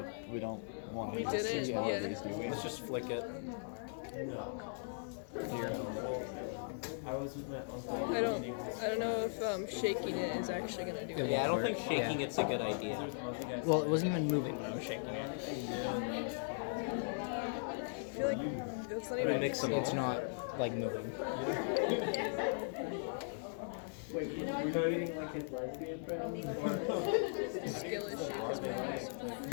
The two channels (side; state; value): right; silent; digital silence